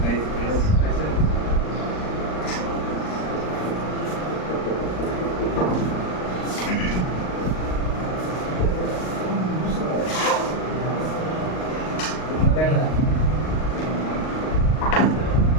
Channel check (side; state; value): right; late; 38 ms